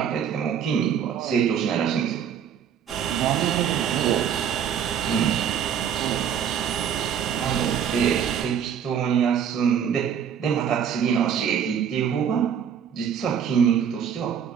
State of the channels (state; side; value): quieter; left; 8.3 dB